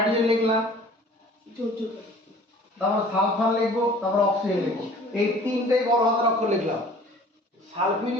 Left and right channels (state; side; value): normal; both; correlation 0.49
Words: লিখলাম, তারপর সালফার লিখবো, তারপর অক্সিজেন লিখবো, এই তিনটেই বড় হাতের অক্ষর লিখলাম।